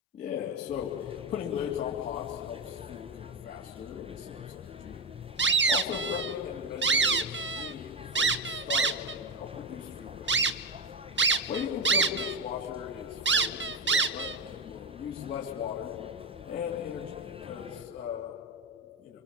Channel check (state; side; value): normal; both; correlation 0.15